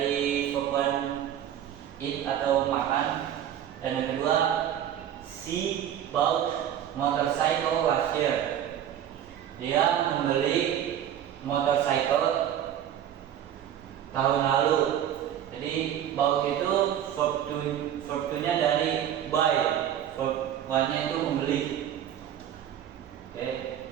verb one eat atau makan, dan yang kedua she bought motorcycle last year. Dia membeli motorcycle tahun lalu. Jadi bought itu verb to nya dari buy, verb one nya itu membeli. Oke,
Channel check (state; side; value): quieter; left; 10.4 dB